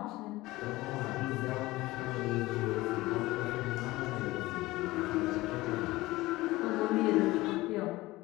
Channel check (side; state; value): right; quieter; 19.0 dB